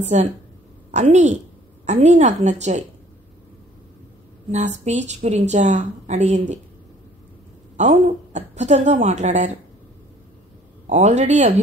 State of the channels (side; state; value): both; normal; correlation 0.56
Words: అన్నీ నాకు నచ్చాయి. నా స్పీచ్ గురించా అడిగింది. అవును, అద్భుతంగా మాట్లాడారు. ఆల్రెడీ